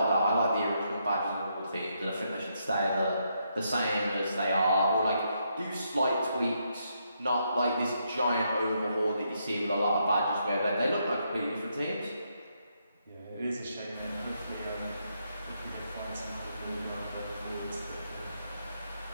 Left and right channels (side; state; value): both; inverted; correlation -0.78